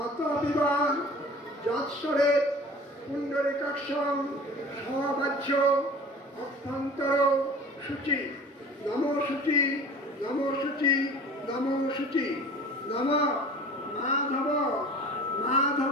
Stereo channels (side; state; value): both; normal; correlation 0.42